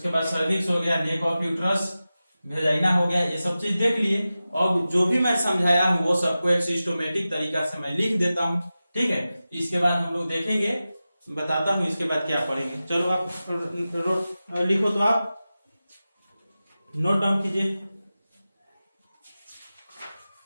बाद सर्विक्स हो गया, नेक ऑफ यूट्रस, वेजाइना हो गया, ये सब चीज देख लिए। और जो भी मैं समझाया हूँ वो सबको एक सिस्टमेटिक तरीका से मैं लिख देता हूँ। ठीक है, इसके बाद हम लोग देखेंगे, बताता हूँ इसके बाद क्या पढ़ेंगे। चलो आप लिखो, तो आप नोट डाउन कीजिए।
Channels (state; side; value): inverted; both; correlation -0.95